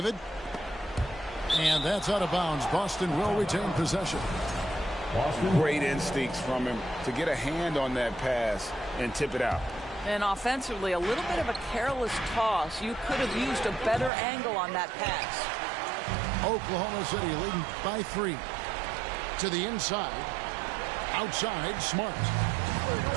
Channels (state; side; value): drops out; left; at 14.1 s